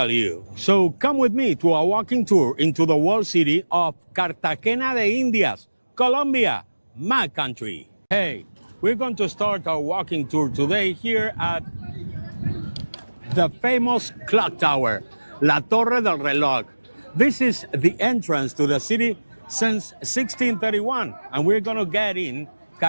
you. So come with me to a walking tour into the walled city of Cartagena de Indias, Colombia, my country. Hey, we're going to start our walking tour today here at the famous clock tower, La Torre del Reloj. This is the entrance to the city since 1631, and we're gonna get in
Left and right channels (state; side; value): inverted; both; correlation -1.00